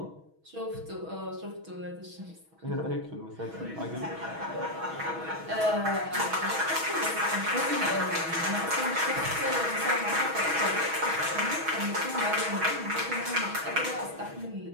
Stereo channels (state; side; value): late; left; 6.2 ms